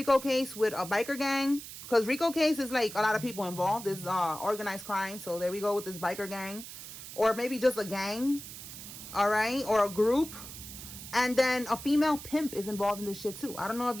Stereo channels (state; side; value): noise; right; hiss, 12 dB below the sound